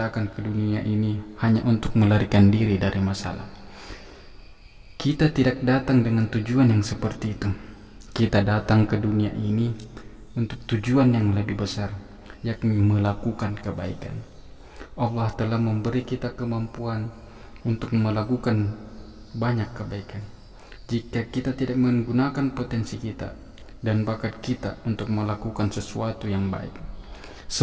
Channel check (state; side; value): identical; both; correlation 1.00